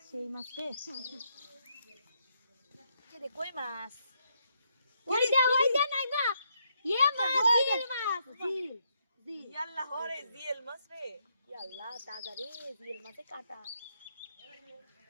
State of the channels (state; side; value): inverted; both; correlation -0.77